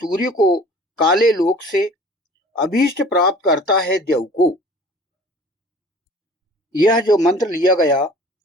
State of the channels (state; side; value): normal; both; correlation 0.47